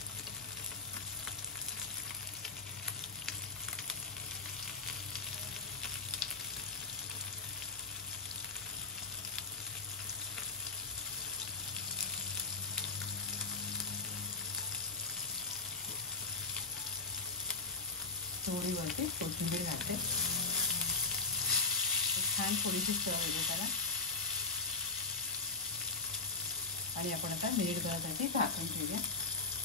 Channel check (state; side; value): quieter; right; 3.9 dB